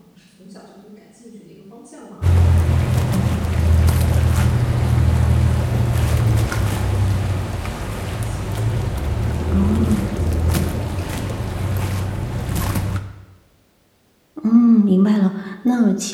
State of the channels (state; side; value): identical; both; correlation 1.00